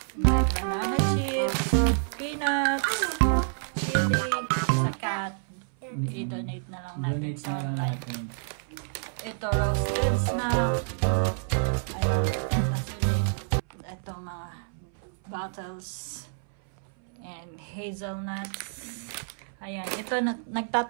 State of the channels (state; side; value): silent; left; 59 dB below the other